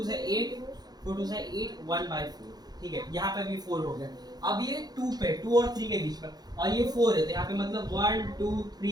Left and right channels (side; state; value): left; late; 0.19 ms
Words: से 8 4 2 से 8 1/4। ठीक है, यहाँ पे भी 4 हो गया। अब ये 2 पे 2 और 3 के बीच में, और ये 4 है, तो यहाँ पे मतलब 1 2